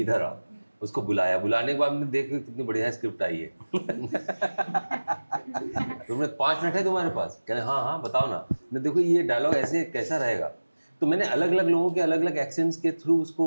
आओ। उसको बुलाया, बुलाने के बाद हमने देखा कितनी बढ़िया स्क्रिप्ट आई है तुमने 5 मिनट है तुम्हारे पास? कहने हाँ हाँ बताओ ना। मैं देखो ये डायलॉग ऐसे कैसा रहेगा। तो मैंने अलग अलग लोगों के अलग अलग एक्सेंट्स के थ्रू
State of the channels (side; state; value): both; inverted; correlation -1.00